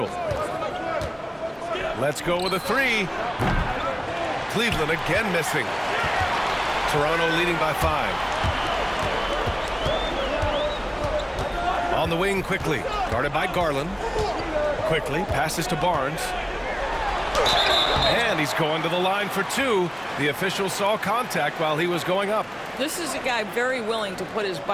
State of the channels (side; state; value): both; identical; correlation 1.00